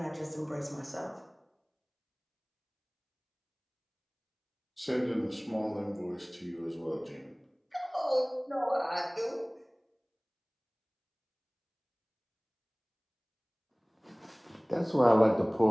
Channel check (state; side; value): identical; both; correlation 1.00